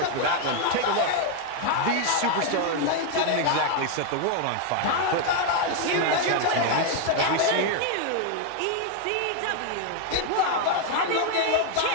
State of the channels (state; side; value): different; both; correlation 0.00